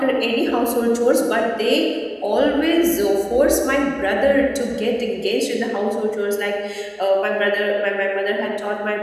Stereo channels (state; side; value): identical; both; correlation 1.00